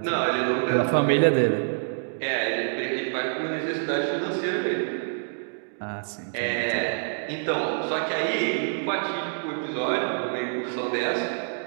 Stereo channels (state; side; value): silent; left; digital silence